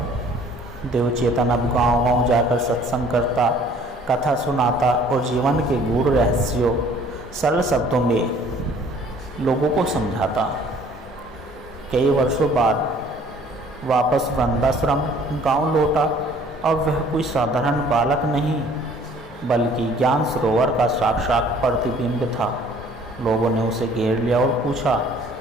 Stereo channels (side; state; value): both; normal; correlation 0.55